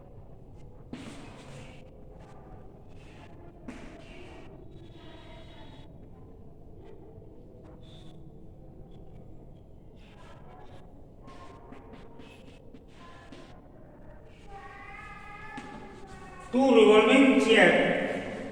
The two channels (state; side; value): identical; both; correlation 1.00